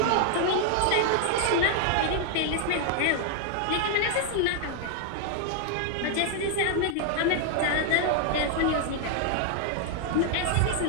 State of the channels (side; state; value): both; different; correlation 0.00